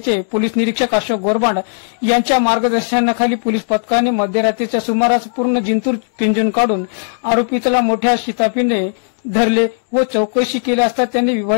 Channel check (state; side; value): silent; right; digital silence